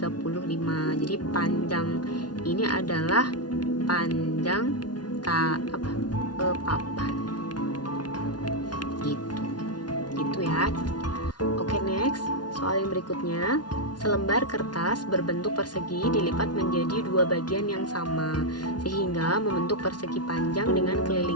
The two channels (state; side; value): late; right; 0.70 ms